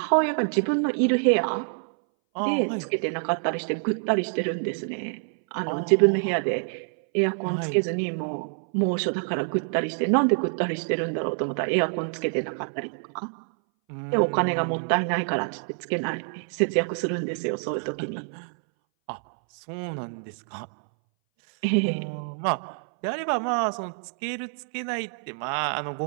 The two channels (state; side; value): silent; left; 60 dB below the other